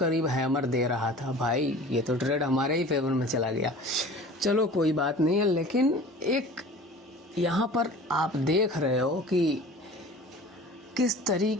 हैमर दे रहा था भाई। ये तो ट्रेड हमारे ही फेवर में चला गया, चलो कोई बात नहीं है। लेकिन एक यहाँ पर आप देख रहे हो कि किस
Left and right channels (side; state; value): both; normal; correlation 0.42